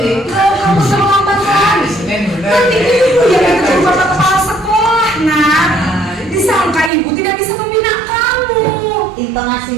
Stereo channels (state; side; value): drops out; left; at 6.9 s